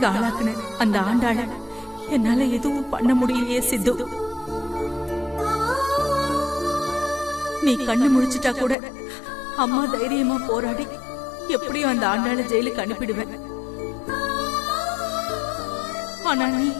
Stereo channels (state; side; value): drops out; right; at 8.8 s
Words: ஆளாக்குன அந்த ஆண்டாள என்னால எதுவும் பண்ண முடியலையே சித்து. நீ கண்ணு முழிச்சிட்டா கூட அம்மா தைரியமா போராடி எப்படியும் அந்த ஆண்டாள ஜெயிலுக்கு அனுப்பிடுவேன். ஆனா நீ